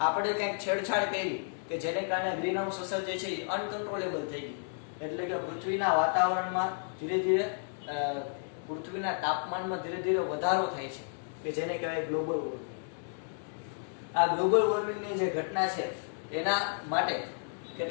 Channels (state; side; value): silent; right; digital silence